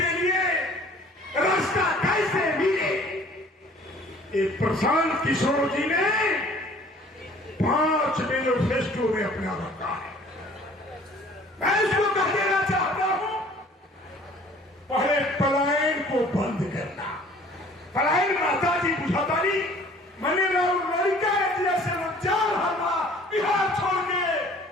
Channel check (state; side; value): normal; both; correlation 0.52